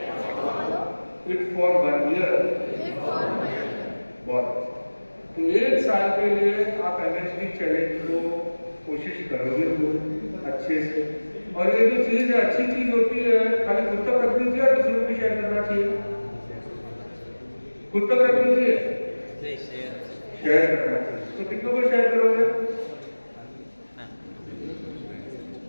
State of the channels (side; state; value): both; inverted; correlation -1.00